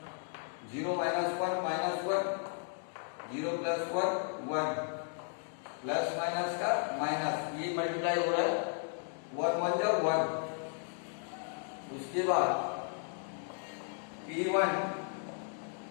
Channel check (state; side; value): silent; right; 55 dB below the other